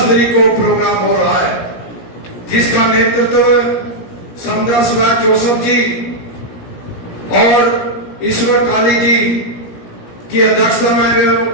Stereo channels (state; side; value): late; right; 17 ms